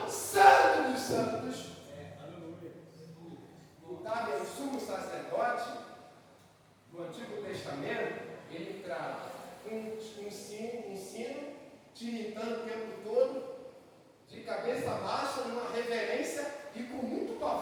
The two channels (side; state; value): both; identical; correlation 1.00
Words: Santo dos Santos. O sumo sacerdote do Antigo Testamento, ele traz um sino tiritando o tempo todo, de cabeça baixa, numa reverência e com muito